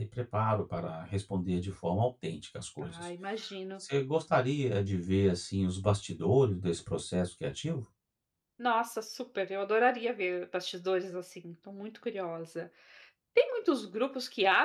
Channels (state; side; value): identical; both; correlation 1.00